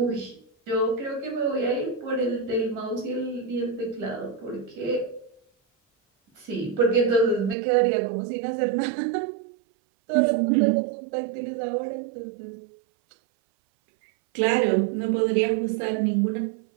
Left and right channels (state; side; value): drops out; left; at 7.6 s